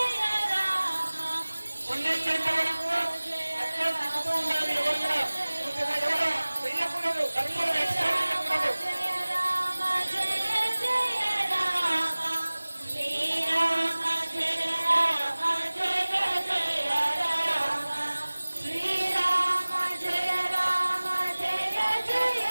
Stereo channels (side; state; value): both; inverted; correlation -1.00